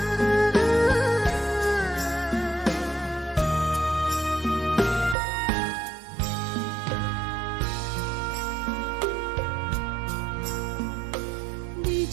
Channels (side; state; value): left; drops out; at 5.2 s